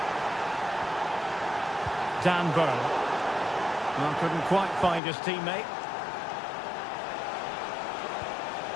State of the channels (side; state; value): right; drops out; at 5.0 s